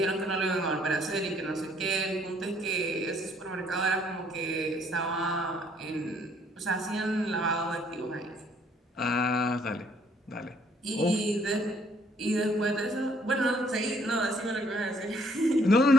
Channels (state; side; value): normal; both; correlation 0.64